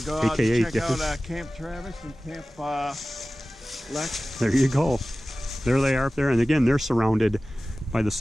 Go out AKA and check out Camp Travis and Camp Lex. There you go. There they are up there, and again, they're surrounded by the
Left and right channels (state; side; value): normal; both; correlation 0.96